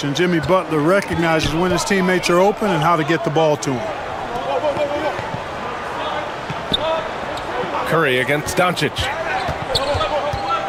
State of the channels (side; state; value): both; identical; correlation 1.00